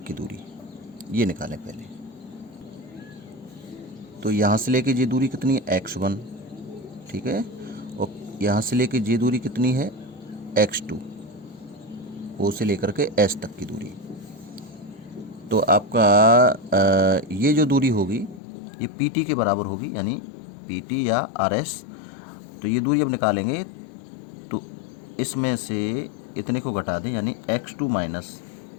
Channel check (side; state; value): right; drops out; at 18.4 s